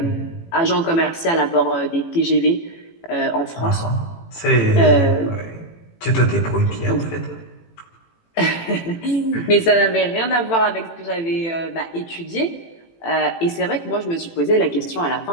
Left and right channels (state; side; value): late; right; 18 ms